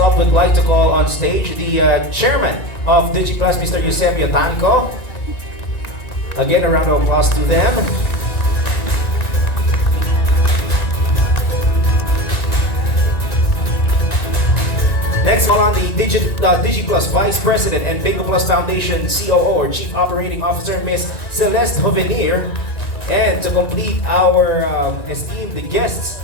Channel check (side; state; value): right; late; 1.9 ms